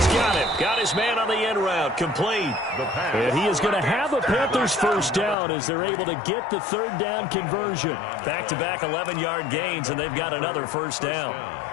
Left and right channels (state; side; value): drops out; right; at 5.4 s